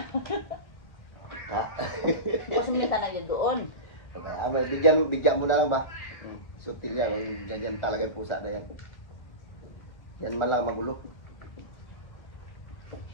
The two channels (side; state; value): right; late; 1.7 ms